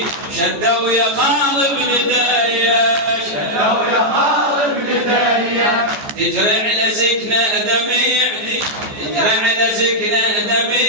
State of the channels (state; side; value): late; left; 14 ms